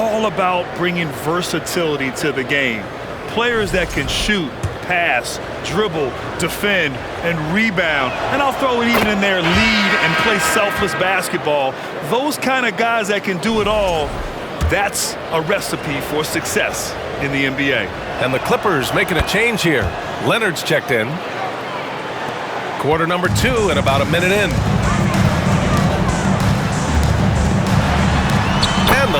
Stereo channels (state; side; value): identical; both; correlation 1.00